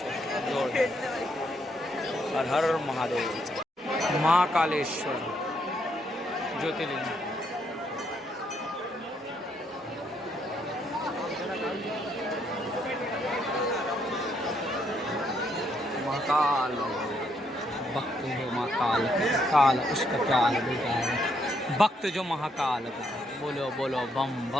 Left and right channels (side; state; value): both; normal; correlation 0.74